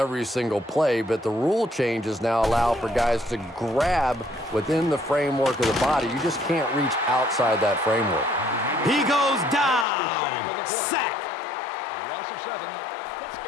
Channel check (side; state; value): right; drops out; at 9.9 s